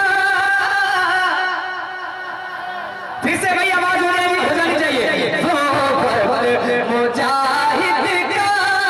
फिर से भाई आवाज हो जानी चाहिए। वो मुजाहिद का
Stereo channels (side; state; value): both; identical; correlation 1.00